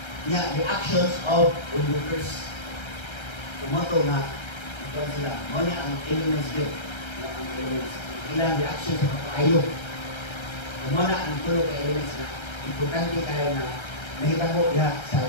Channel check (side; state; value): right; late; 1.3 ms